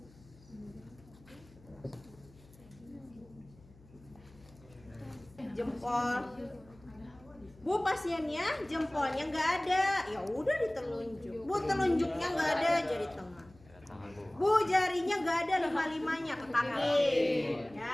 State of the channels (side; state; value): left; noise; hum, 24 dB below the sound